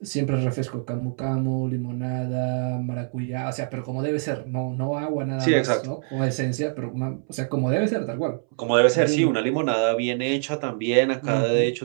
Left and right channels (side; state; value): left; silent; 62 dB below the other